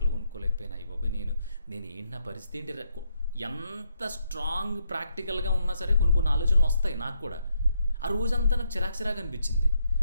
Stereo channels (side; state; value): both; inverted; correlation -0.77